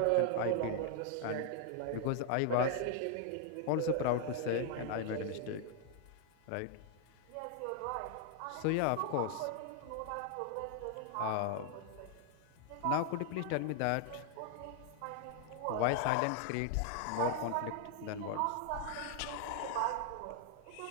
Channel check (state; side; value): different; both; correlation 0.00